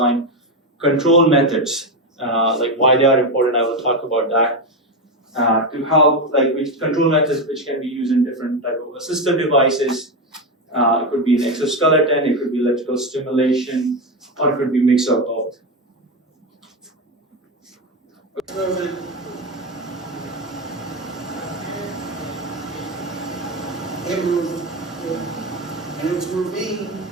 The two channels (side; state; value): both; normal; correlation 0.12